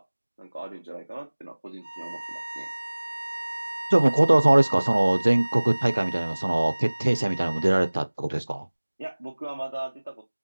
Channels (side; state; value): both; inverted; correlation -1.00